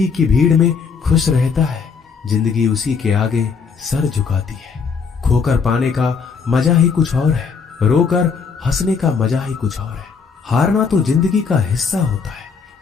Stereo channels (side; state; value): right; quieter; 5.6 dB